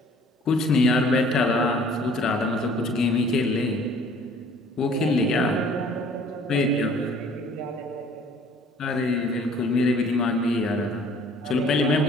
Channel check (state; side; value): normal; both; correlation 0.54